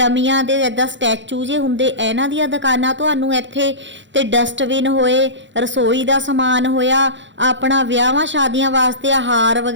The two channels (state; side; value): late; left; 0.54 ms